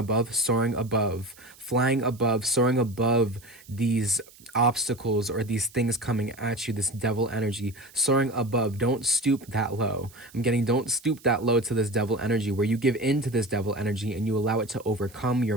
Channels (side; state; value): right; noise; hiss, 24 dB below the sound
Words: soaring above, soaring above these obstacles or these things coming at you, this devil energy, soaring above. Don't stoop that low. I'm getting don't stoop that low to this devil energy, where you give in to this devil energy and you allow it to overcome